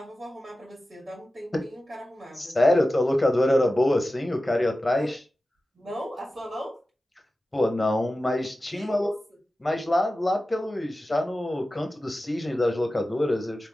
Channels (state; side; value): normal; both; correlation 0.94